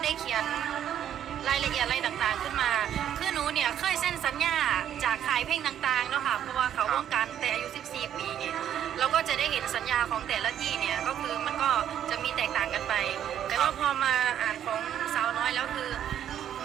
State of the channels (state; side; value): quieter; left; 10.2 dB